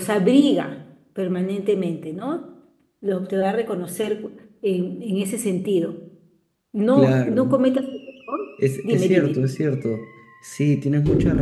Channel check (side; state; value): both; identical; correlation 1.00